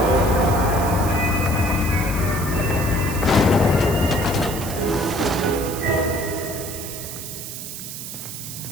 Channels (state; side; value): noise; right; hiss, 9 dB below the sound